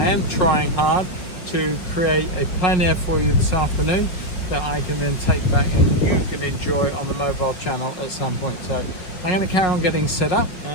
am trying hard to create a plein air for you this afternoon that I can then take back and you can enjoy on the mobile channel at some point. So I'm going to carry on getting set up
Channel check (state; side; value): late; right; 5.4 ms